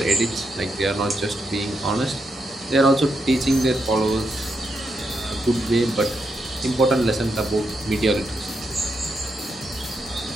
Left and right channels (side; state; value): both; normal; correlation 0.82